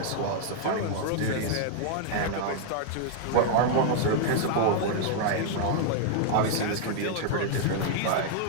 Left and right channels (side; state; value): both; different; correlation -0.01